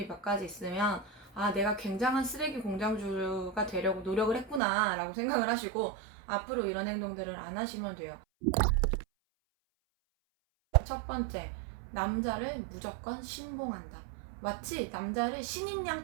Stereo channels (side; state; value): left; drops out; at 4.6 s